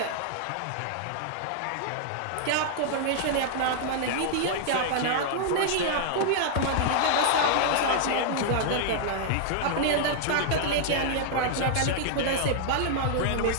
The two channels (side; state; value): both; different; correlation -0.01